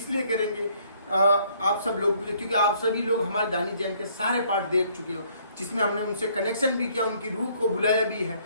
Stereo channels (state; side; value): inverted; both; correlation -0.64